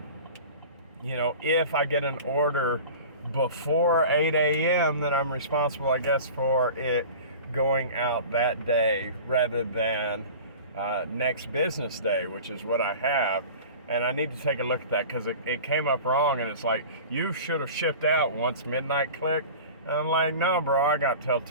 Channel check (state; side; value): inverted; both; correlation -0.38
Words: you know, if I get an order before 8 a.m., then I'm responsible, I guess, for it going out that day rather than next business day, which is what I have. And I need to take a look at that, because it came up wrong, and it's like, you should have shipped out once midnight clicked. And I'm like, no, bro, I got till